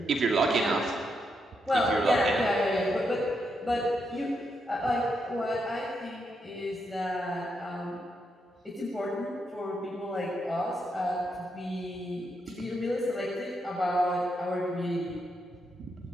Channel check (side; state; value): both; normal; correlation 0.81